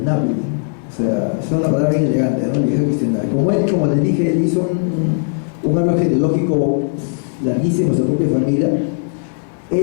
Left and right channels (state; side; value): silent; right; digital silence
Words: O sea, es una palabra bien elegante, ¿no? Linaje cuestionable. Como les dije, él hizo un árbol genealógico larguísimo de su propia familia.